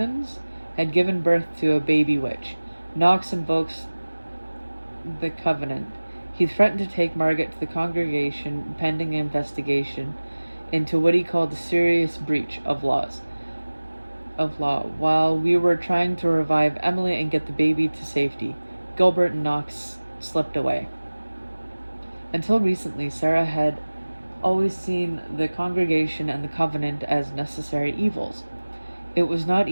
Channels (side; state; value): both; inverted; correlation -1.00